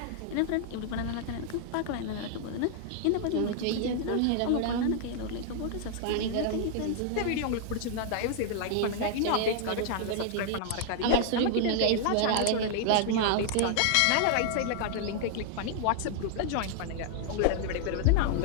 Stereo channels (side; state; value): both; different; correlation -0.01